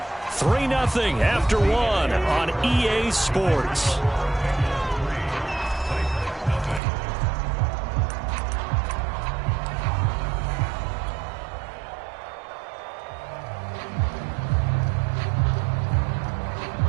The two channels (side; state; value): left; drops out; at 6.8 s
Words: 3-0 after 1 on EA Sports. Here